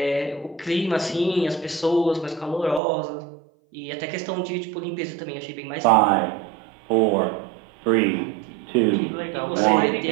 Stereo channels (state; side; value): drops out; left; at 2.8 s